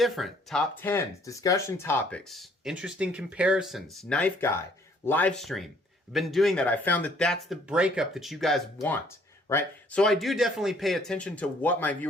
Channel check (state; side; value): normal; both; correlation 0.62